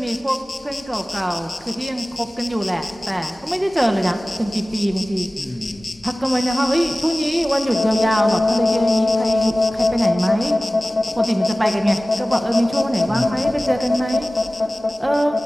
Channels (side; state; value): both; normal; correlation 0.97